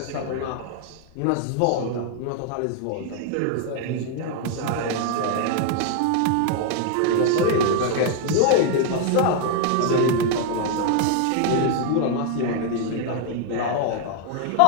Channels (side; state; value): both; different; correlation 0.00